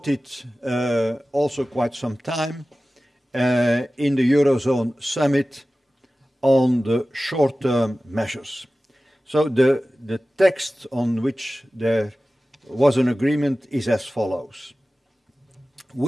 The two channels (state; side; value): normal; both; correlation 0.96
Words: also quite some time in the Eurozone summit on the short-term measures. So the text on which there was an agreement is as follows.